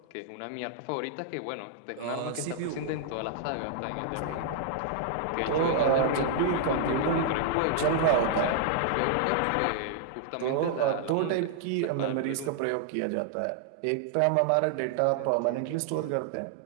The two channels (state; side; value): different; both; correlation -0.01